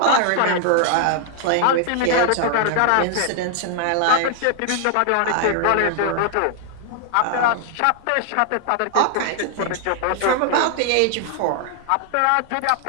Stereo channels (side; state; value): both; different; correlation 0.00